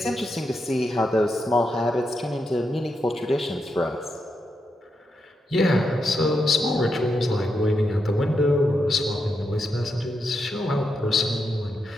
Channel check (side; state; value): both; normal; correlation 0.84